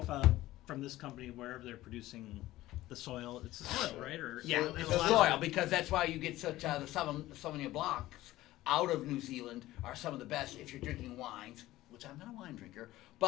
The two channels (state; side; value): quieter; right; 16.3 dB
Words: from this company, wherever they're producing the soil, it's the soil, right? Or Yeah, there's it's a lot the of- soil because that's why you get such the Sauvignon Blancs out of New Zealand are some of the best if you're drinking wines, which I'm not a wine drinker,